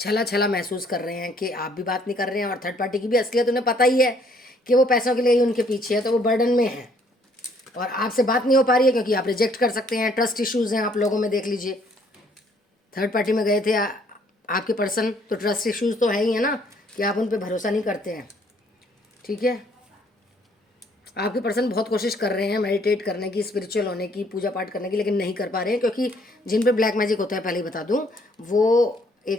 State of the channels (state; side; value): normal; both; correlation 0.64